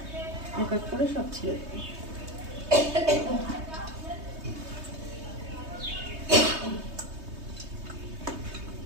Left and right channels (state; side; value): late; left; 3.2 ms